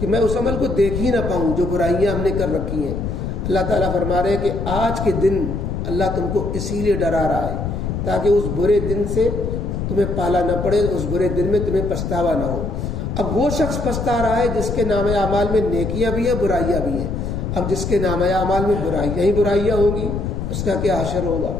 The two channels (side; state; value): left; noise; rumble, 3 dB below the sound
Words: میں اس عمل کو دیکھ ہی نہ پاؤں جو برائیاں ہم نے کر رکھی ہیں. اللہ تعالیٰ فرما رہے ہیں کہ آج کے دن اللہ تم کو اسی لیے ڈرا رہا ہے تاکہ اس برے دن سے تمہیں پالا نہ پڑے, اس برے دن میں تمہیں پچھتاوا نہ ہو. اب وہ شخص پچھتا رہا ہے جس کے نامہ اعمال میں نیکیاں بھی ہیں برائیاں بھی ہیں. اب جس کے نامہ اعمال میں برائیاں ہی برائیاں ہوں گی اس کا کیا حشر ہوگا؟